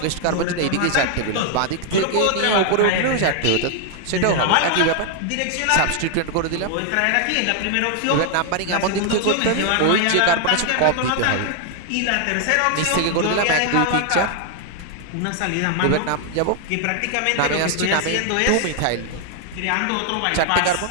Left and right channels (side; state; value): both; different; correlation 0.00